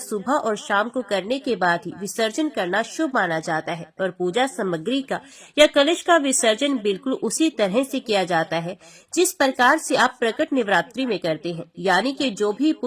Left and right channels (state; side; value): identical; both; correlation 1.00